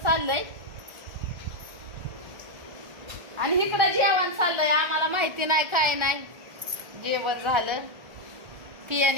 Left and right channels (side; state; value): left; late; 1.4 ms